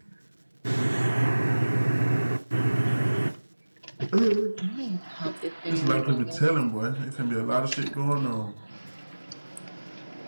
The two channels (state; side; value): inverted; both; correlation -1.00